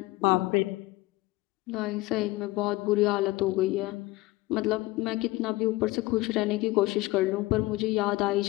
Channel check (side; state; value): right; quieter; 20.1 dB